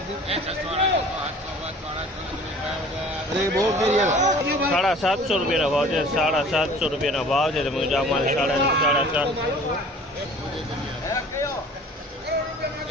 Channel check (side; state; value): both; normal; correlation 0.47